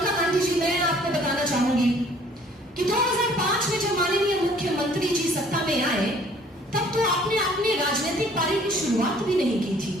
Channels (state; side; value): normal; both; correlation 0.56